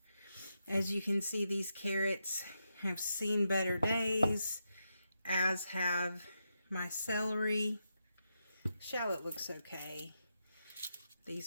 As you can see, these carrots have seen better days, as have my celery. Shallot looks okay.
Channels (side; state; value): both; inverted; correlation -0.85